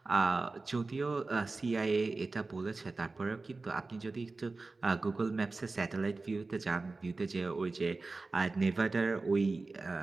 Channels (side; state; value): left; quieter; 3.6 dB